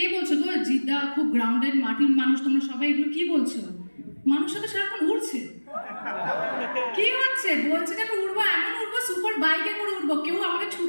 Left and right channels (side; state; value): both; inverted; correlation -1.00